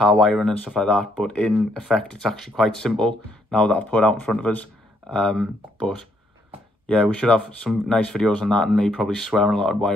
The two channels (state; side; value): normal; both; correlation 0.72